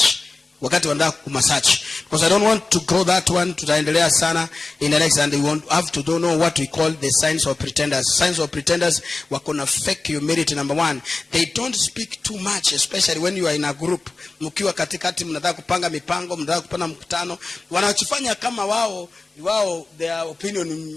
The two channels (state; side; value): quieter; right; 3.5 dB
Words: Wakati wanda kumasearch. Because I don't want to grow that one to tutaendelea sana in the next, and they have to don't know what we call the signs of pretenders. Signs of pretenders wakona fake humility. Number 1, they don't speak too much, especially when you are in a group. Mkiwa katikati mnataka kupanga mipango, mnataka kupanga mkutano, wanachofanya kama wao they are